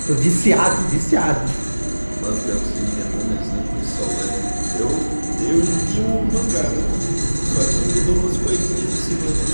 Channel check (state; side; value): inverted; both; correlation -1.00